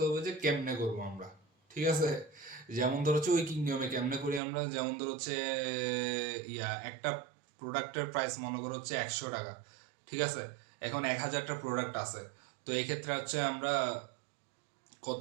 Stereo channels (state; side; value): drops out; left; at 4.4 s